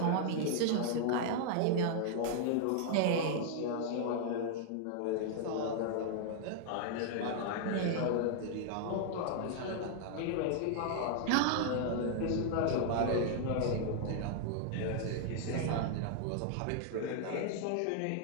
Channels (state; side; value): different; both; correlation -0.01